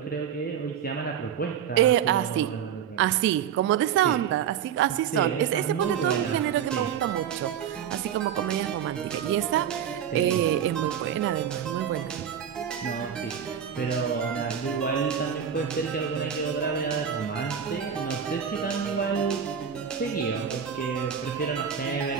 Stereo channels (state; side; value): quieter; left; 8.4 dB